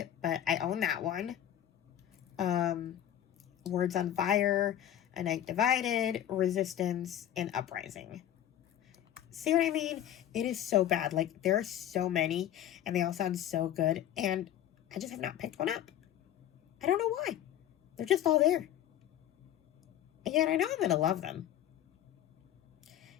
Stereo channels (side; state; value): right; quieter; 11.3 dB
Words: but I own that one. Words on Fire, A Night Divided, Resistance, and Uprising. See what I mean? It is so bad. Like, there are so many, and they all sound so good, and I just have not picked one up. I don't know why. They're just all there. And yet I know I'm going to love them.